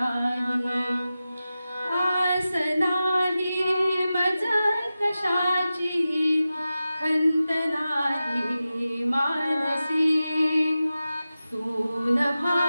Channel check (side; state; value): both; inverted; correlation -0.94